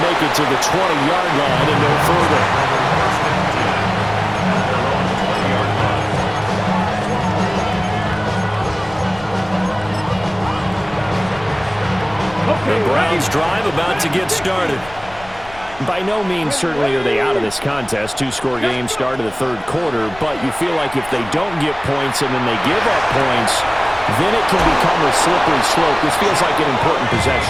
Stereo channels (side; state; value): left; noise; rumble, 20 dB below the sound